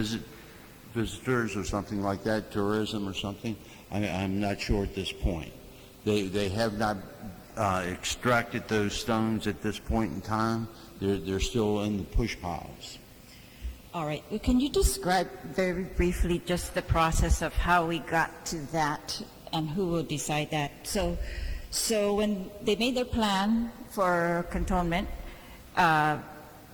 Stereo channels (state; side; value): identical; both; correlation 1.00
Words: visitors or something like that, tourism or something. I'm not sure at this point. They have not extracted those stones at this point in time. They're still in the push piles. All right. Well, can you describe very briefly just the process of how we got to that and who will decide that? So when they made their plan for cantonment,